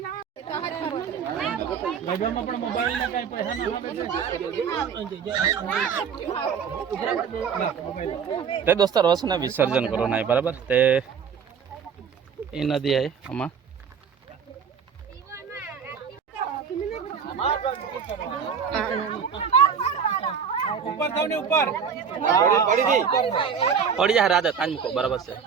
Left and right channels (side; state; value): left; quieter; 6.8 dB